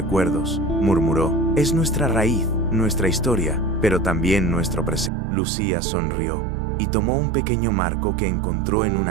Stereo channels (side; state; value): left; drops out; at 5.1 s